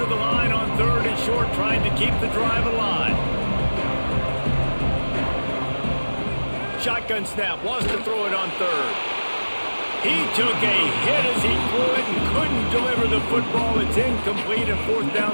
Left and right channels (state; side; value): inverted; both; correlation -1.00